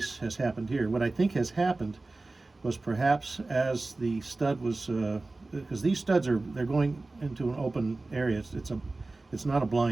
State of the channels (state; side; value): quieter; left; 3.2 dB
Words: has happened here. What I think has happened was perhaps as the stud was, because these studs they're going into an open area. It's not a